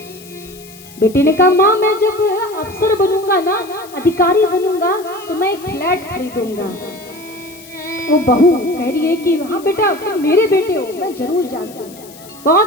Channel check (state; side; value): noise; left; hiss, 20 dB below the sound